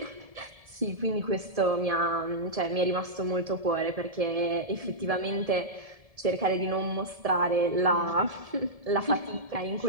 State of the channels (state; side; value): late; left; 1.7 ms